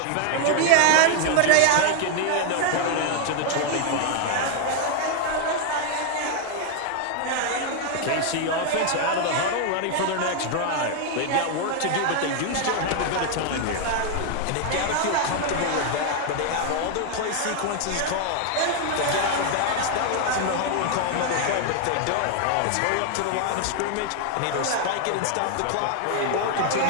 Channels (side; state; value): both; different; correlation 0.00